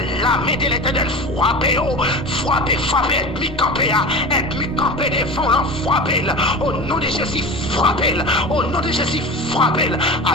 la main de l'éternel, frappez, ennemi campé devant l'en frappez, au nom de Jésus, frappez, au nom de Jésus, frappez,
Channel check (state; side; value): normal; both; correlation 0.31